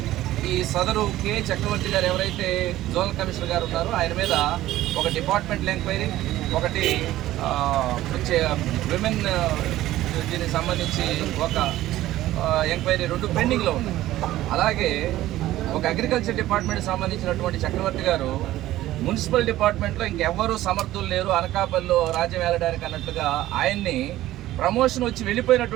ఈ సదరు కె చక్రవర్తి గారు ఎవరైతే జోనల్ కమిషనర్ గారు ఉన్నారో ఆయన మీద ఒక డిపార్ట్మెంటల్ ఎంక్వైరీ, ఒకటి విమెన్ దీనికి సంబంధించి ఒక ఎంక్వైరీ 2 పెండింగ్లో ఉన్నాయి. అలాగే ఒక అగ్రికల్చర్ డిపార్ట్మెంట్కి సంబంధించినటువంటి చక్రవర్తి గారు మున్సిపల్ డిపార్ట్మెంట్లో ఇంకెవ్వరూ సమర్థులు లేరు అనకాపల్లిలో రాజ్యం వేలడానికి అన్నట్టుగా ఆయన్ని ప్రమోషన్ వచ్చి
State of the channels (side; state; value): left; quieter; 15.0 dB